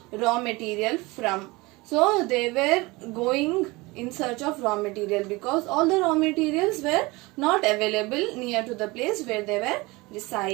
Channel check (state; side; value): quieter; left; 23.1 dB